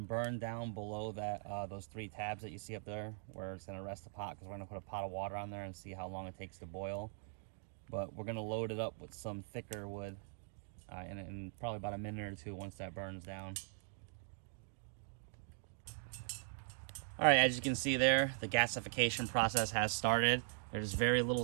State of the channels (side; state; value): left; silent; digital silence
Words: burn down below that those 3 tabs that you see up there where it's gonna rest the pot, because we're gonna put a pot of water on there and see how long it takes to boil. But we're gonna load it up with some thicker wood in probably about a minute or 2 once that burns down. All right, as you can see there, the gasification process has started. There's very little